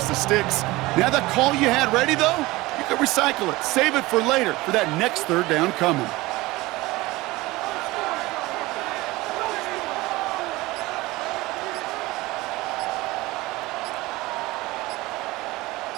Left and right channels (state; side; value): quieter; left; 20.3 dB